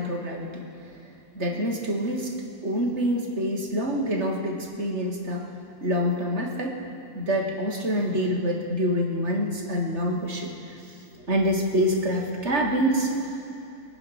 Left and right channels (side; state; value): left; late; 3.3 ms